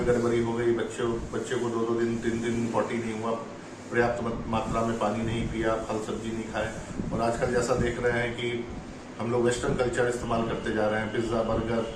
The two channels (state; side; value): identical; both; correlation 1.00